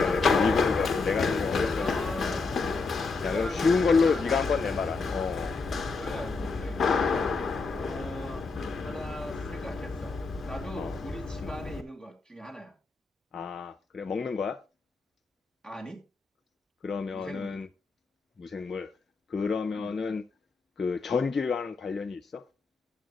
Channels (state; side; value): quieter; right; 4.2 dB